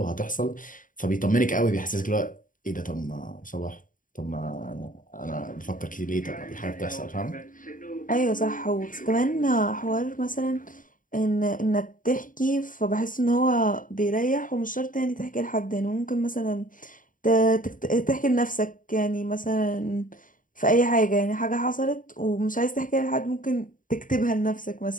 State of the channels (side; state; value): right; late; 0.39 ms